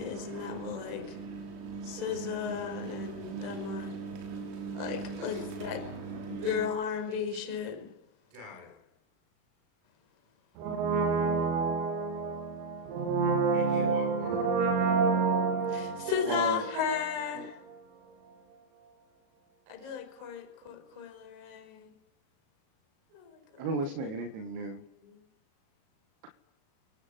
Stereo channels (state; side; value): late; left; 37 ms